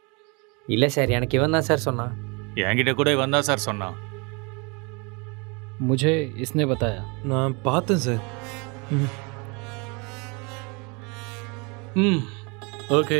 இல்ல சார், எனக்கு இவன் தான் சார் சொன்னான். என்கிட்ட கூட இவன் தான் சார் சொன்னான். मुझे इसने बताया. நான் பார்த்தேன் சார். ஓகே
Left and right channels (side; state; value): left; quieter; 30.4 dB